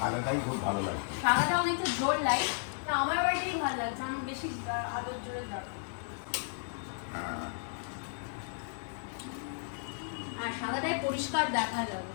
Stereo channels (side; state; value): right; silent; 55 dB below the other